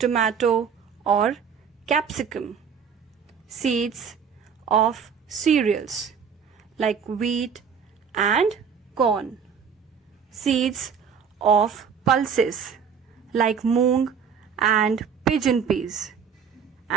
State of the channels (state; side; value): quieter; left; 6.8 dB